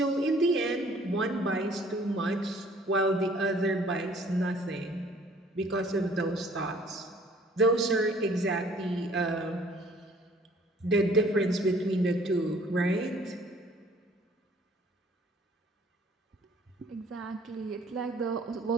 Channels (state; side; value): normal; both; correlation 0.56